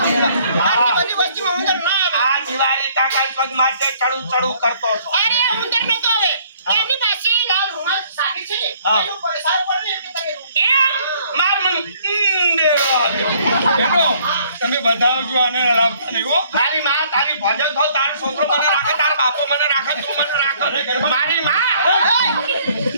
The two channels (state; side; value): inverted; both; correlation -0.61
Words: આટલી બધી વસ્તીમાં ઉંદર ના આવે. આ દિવાળી કાકા પગ માટે ચડું ચડું કરતો હતો. અરે ઉંદર નતો આવે. એમની પાસે લાલ રૂમાલ સાકી છે ને. હા. એનું પૈસા પડે ને એટલે તમે એમ માર મન દેવો આયો. બેનો તમે બતાવજો આને લાવતા નહીં હો. તારી માં તારી ભજન થો, તારો છોકરો મને રાખે, તારો બાપો મને રાખે, તું મને રાખે. મારી માં.